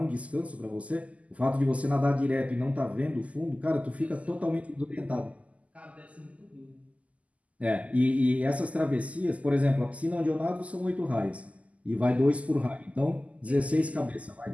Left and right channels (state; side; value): late; left; 0.070 ms